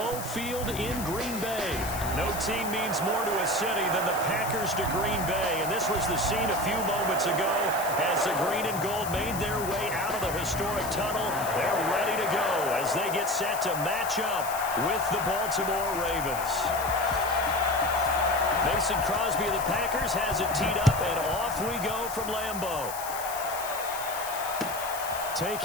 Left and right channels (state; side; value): noise; left; hiss, 10 dB below the sound